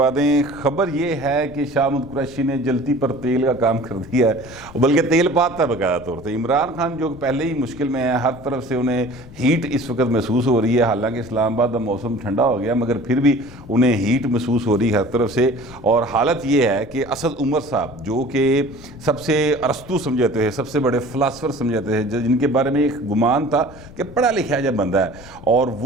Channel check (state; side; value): noise; left; rumble, 19 dB below the sound